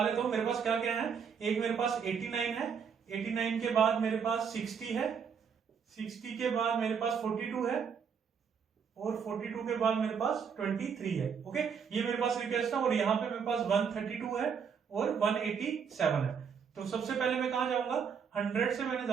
लेता हूं। मेरे पास क्या क्या है, एक मेरे पास 89 है, 89 के बाद मेरे पास 60 है, 60 के बाद मेरे पास 42 है और 42 के बाद मेरे पास 23 है। ओके, ये मेरे पास रिक्वेस्ट है और यहाँ पे मेरे पास 132 है और 187 है। तो सबसे पहले मैं कहां जाऊंगा, 100 से मैंने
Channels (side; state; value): left; quieter; 6.7 dB